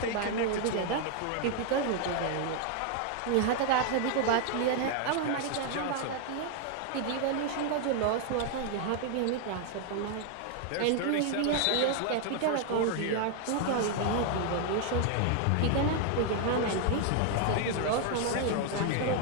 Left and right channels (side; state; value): both; different; correlation 0.00